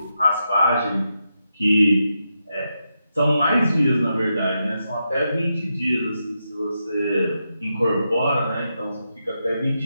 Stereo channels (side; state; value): both; inverted; correlation -0.85